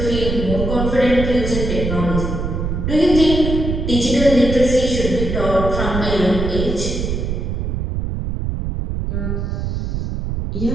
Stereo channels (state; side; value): noise; right; rumble, 2 dB below the sound